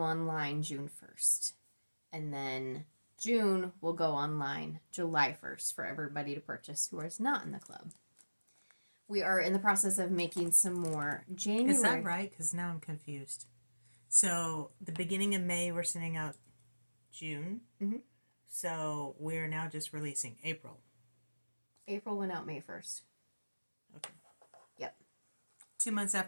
online June 1st. And then June will go online July 1st for everybody to purchase who is not in the club. We are in the process of making some more January. Is that right? Because now I'm confused. So the beginning of May, we're sending out June. Mm-hmm. So we're now just releasing April. April went out May 1st. Okay. Yep. 2 months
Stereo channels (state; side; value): inverted; both; correlation -1.00